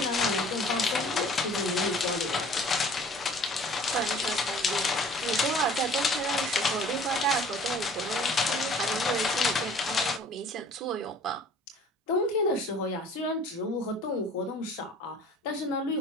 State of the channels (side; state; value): both; normal; correlation 0.49